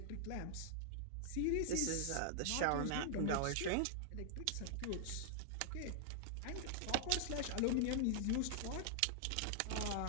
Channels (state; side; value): different; both; correlation -0.01